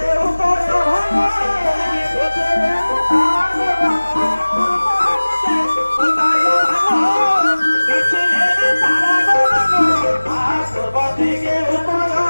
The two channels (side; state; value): both; inverted; correlation -1.00